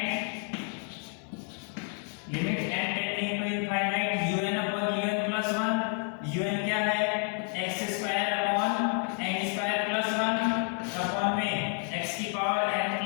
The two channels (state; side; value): quieter; right; 37.8 dB